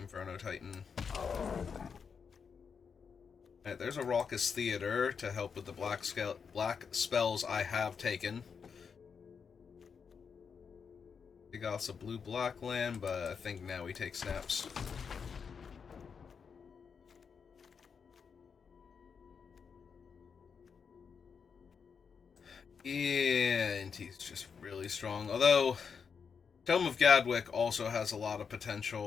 Titan. Alright, there's a Raucous Theater to help with the black spells I have taken. He got us a blue-black land, but I think now we take snaps. Yeah, and he's just really strong. Although, Tome of Gadwick also has a lot of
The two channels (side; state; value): right; quieter; 6.2 dB